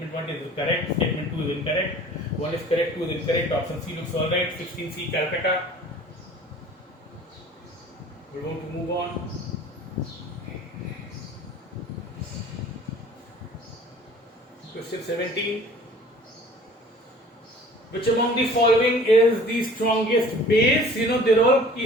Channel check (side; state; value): both; normal; correlation 0.48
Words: 1 is correct. Statement 2 is incorrect. 1 is correct. 2 is incorrect. Option C looks all right. 16C Calcutta. We're going to move on. Question 17. Which among the following is the strongest base? They're all